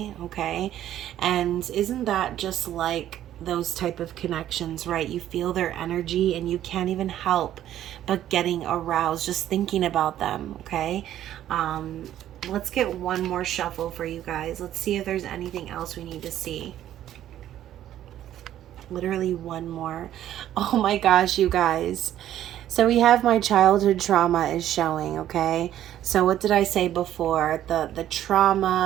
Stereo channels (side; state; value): left; quieter; 12.0 dB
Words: Okay, and isn't that just like those type of connections, right? You feel their energy and you can't even help but getting aroused just thinking about them. Okay, let's get one more shuffle for you guys. Let's see if there's anything else we need to see. Literally one more. Oh my gosh, you guys. So we have my childhood trauma is showing. Okay, so what did I say before? The